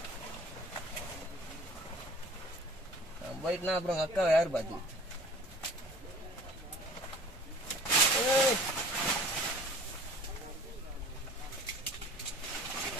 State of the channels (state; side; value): normal; both; correlation 0.46